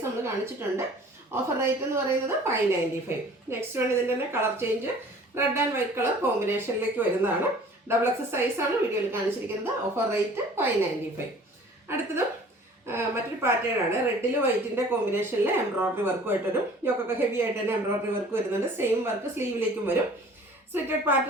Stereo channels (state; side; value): normal; both; correlation 0.49